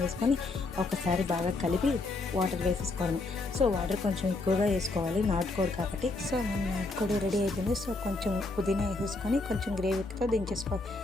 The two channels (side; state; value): right; quieter; 3.2 dB